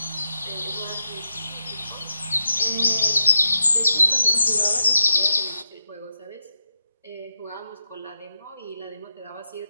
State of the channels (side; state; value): both; inverted; correlation -0.87